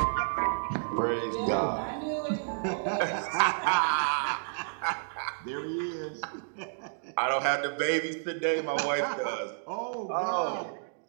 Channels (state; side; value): silent; left; digital silence